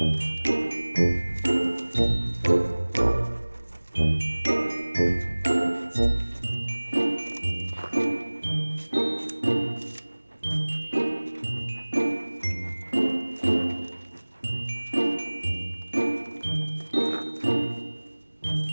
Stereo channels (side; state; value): both; inverted; correlation -1.00